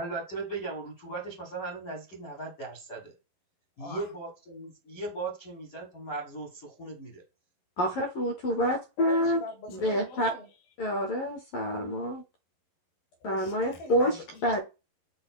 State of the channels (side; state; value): right; late; 11 ms